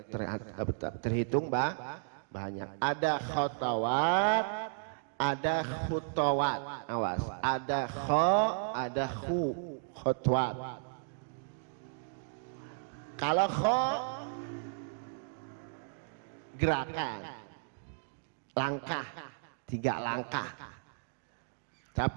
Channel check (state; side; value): silent; left; digital silence